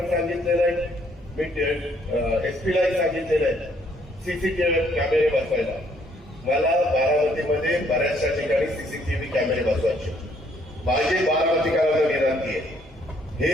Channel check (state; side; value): normal; both; correlation 0.66